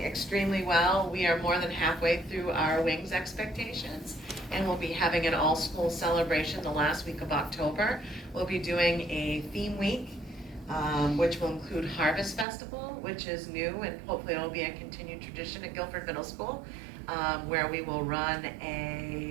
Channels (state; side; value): drops out; left; at 12.5 s